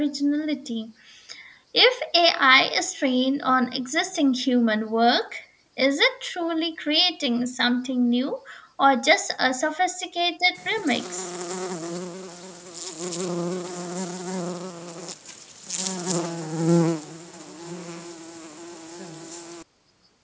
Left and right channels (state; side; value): identical; both; correlation 1.00